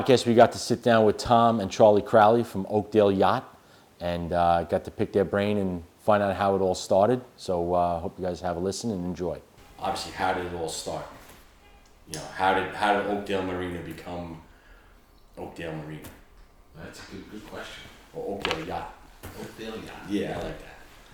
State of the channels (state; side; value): identical; both; correlation 1.00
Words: we got to sit down with Tom and Charlie Crowley from Oakdale Yacht and got to pick their brain and find out how it all started. So hope you guys have a listen and enjoy. Obviously, how did it all start? You know, how did Oakdale Marina become Oakdale Marina? That's a good question. Or Oakdale Yacht? Oakdale Yacht. Yeah, I like